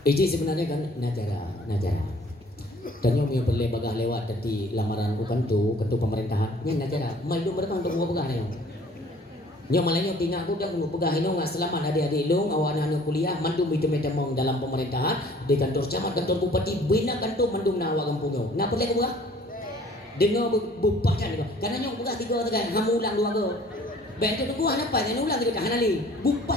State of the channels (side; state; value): both; normal; correlation 0.54